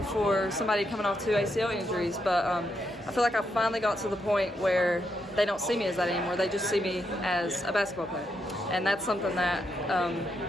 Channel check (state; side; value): normal; both; correlation 0.81